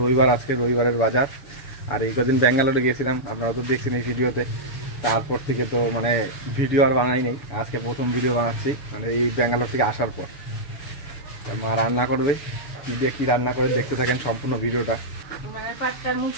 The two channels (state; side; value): late; right; 7.0 ms